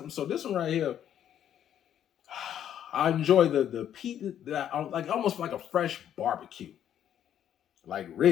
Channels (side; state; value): right; quieter; 10.2 dB